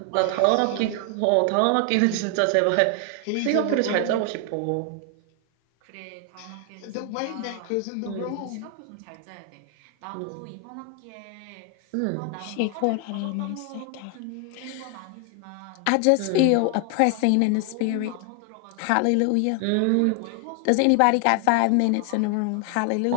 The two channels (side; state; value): both; different; correlation 0.00